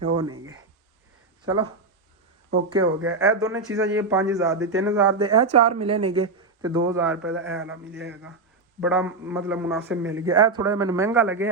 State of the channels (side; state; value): left; quieter; 3.6 dB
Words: ਉਹ ਨਹੀਂਗੇ। ਚਲੋ ਓਕੇ ਹੋ ਗਿਆ। ਇਹ ਦੋਨੇ ਚੀਜ਼ਾਂ ਜੀ 5000 ਦੇ, 3000 ਦੇ ਇਹ 4 ਮਿਲੇ ਨੇਗੇ ਤੇ 2000 ਰੁਪਏ ਦਾ ਇਹ ਵਾਲਾ ਮਿਲਿਆ ਹੈਗਾ। ਬੜਾ ਮਤਲਬ ਮੁਨਾਸਿਬ ਮਿਲ ਗਿਆ। ਇਹ ਥੋੜਾ ਜਿਹਾ ਮੈਨੂੰ ਮਹਿੰਗਾ